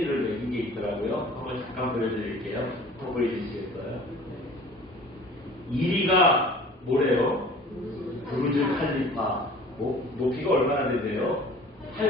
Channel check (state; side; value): normal; both; correlation 0.46